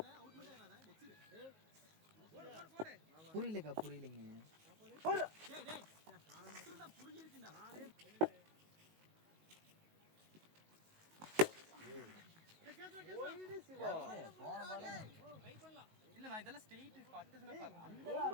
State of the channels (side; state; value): left; late; 19 ms